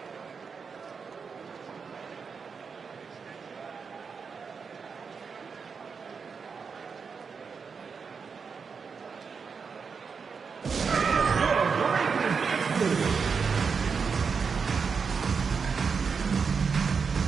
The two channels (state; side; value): quieter; left; 5.6 dB